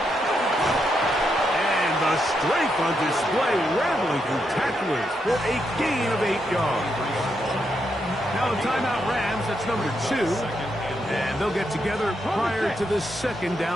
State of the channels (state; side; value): normal; both; correlation 0.81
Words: And the strength on display, rattling through tacklers for a gain of 8 yards. Now the timeout Rams, that's number 2, and they'll get together prior to the 2nd